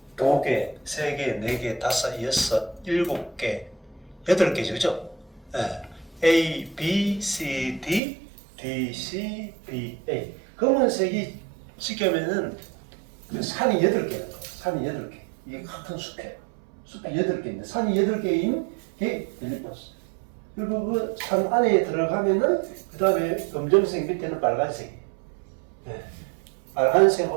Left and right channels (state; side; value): drops out; left; at 8.0 s